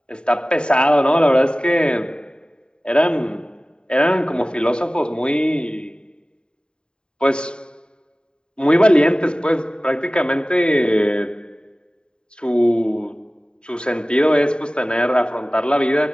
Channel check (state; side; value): late; right; 0.049 ms